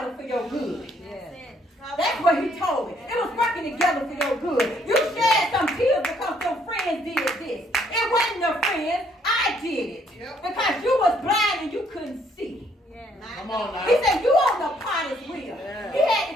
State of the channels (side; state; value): both; normal; correlation 0.66